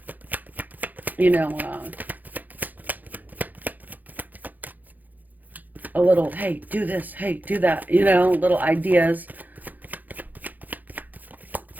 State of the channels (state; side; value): late; left; 0.083 ms